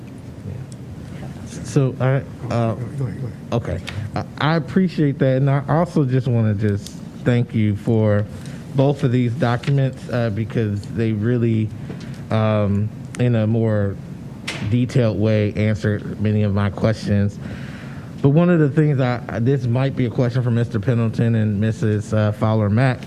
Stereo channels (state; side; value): identical; both; correlation 1.00